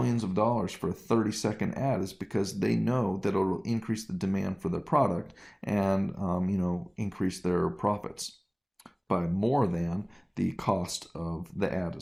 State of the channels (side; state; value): both; identical; correlation 1.00